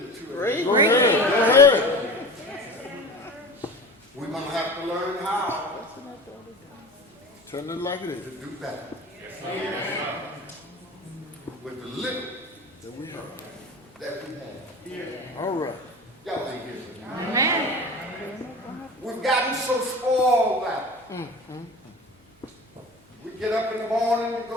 two. Go ahead. Go ahead. We're going to have to learn how Turn it like it is. to do better. With the little That we have. that we have. All right. Y'all ain't here. Amen. We've gotten so spoiled now. We get up in the morning and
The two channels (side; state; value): both; normal; correlation 0.35